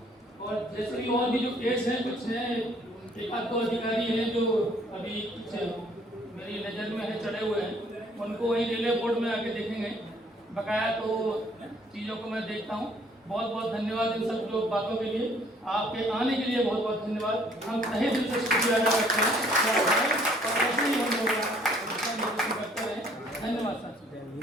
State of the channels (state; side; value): normal; both; correlation 0.60